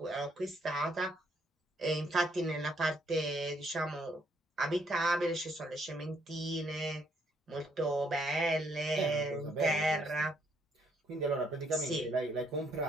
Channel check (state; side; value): normal; both; correlation 0.70